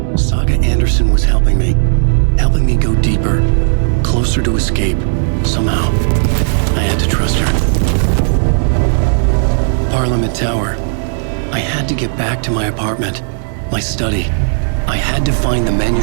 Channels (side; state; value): left; silent; digital silence